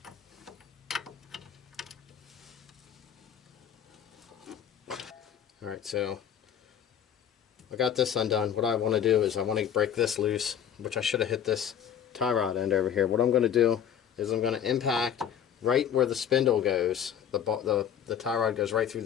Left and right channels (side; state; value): right; quieter; 9.0 dB